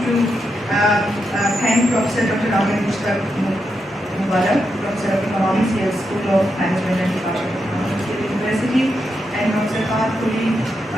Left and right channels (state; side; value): normal; both; correlation 0.84